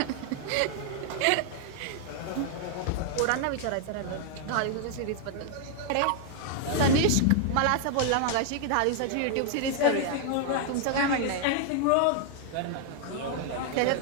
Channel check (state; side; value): different; both; correlation 0.00